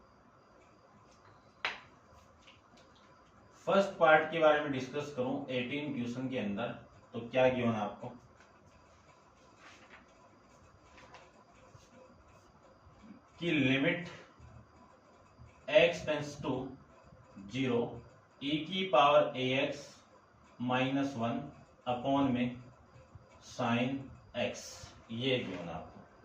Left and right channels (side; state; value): both; identical; correlation 1.00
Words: फर्स्ट पार्ट के बारे में डिस्कस करूं 18 क्वेश्चन के अंदर, तो क्या गिवन आपको, कि limit x tends to 0 e की पावर ax माइनस 1 अपॉन में साइन x, ये गिवन आपको।